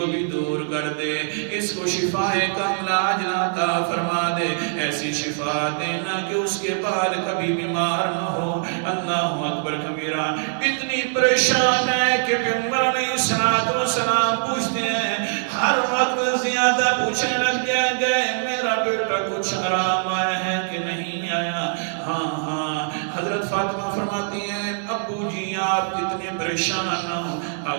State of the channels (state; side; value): silent; left; 63 dB below the other